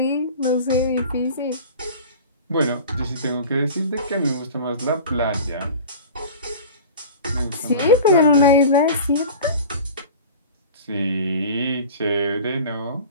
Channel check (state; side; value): inverted; both; correlation -0.37